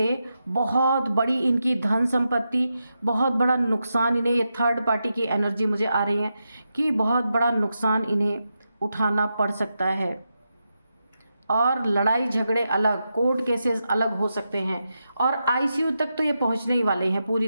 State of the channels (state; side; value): inverted; both; correlation -0.87